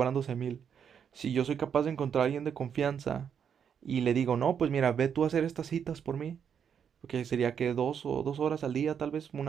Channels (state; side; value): quieter; left; 7.7 dB